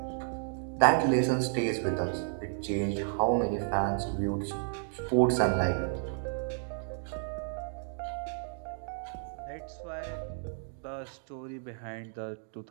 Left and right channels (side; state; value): left; silent; 56 dB below the other